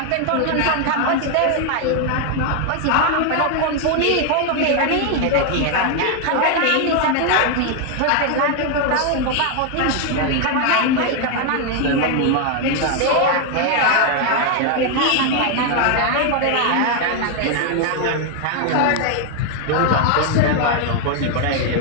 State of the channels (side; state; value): both; different; correlation 0.00